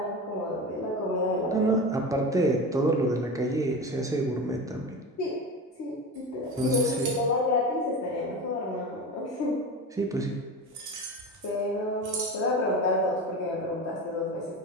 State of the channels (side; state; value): both; normal; correlation 0.27